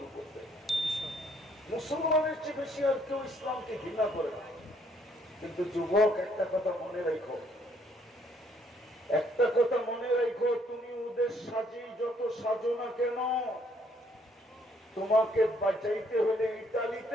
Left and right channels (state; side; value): normal; both; correlation 0.67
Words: করছে। মুসলমানের চেয়ে বেশি আর কেউ ইসলামকে ঘৃণা করে না। কিন্তু যুবক, একটা কথা মনে রাখো, একটা কথা মনে রাখো, তুমি ওদের সাজিয়ে যত সাজো না কেন, তোমাকে বাঁচাইতে হলে